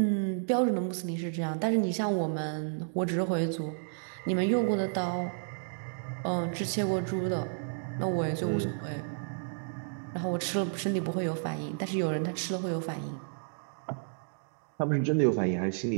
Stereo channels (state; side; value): silent; left; digital silence